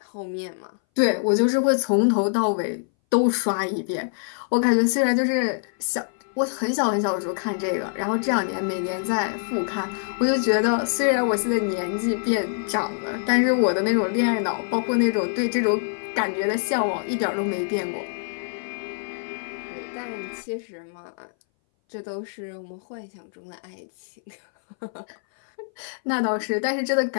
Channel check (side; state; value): right; silent; 60 dB below the other